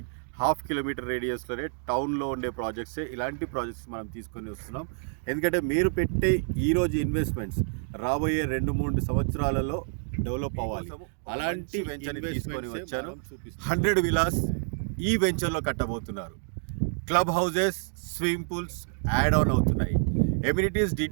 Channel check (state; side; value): silent; left; 59 dB below the other